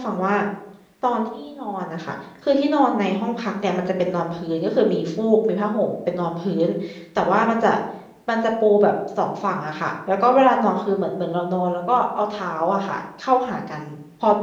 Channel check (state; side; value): identical; both; correlation 1.00